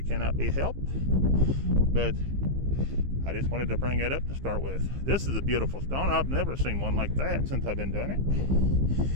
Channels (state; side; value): late; left; 15 ms